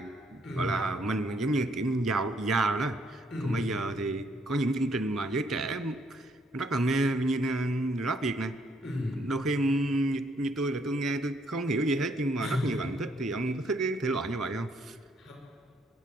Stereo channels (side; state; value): both; normal; correlation 0.69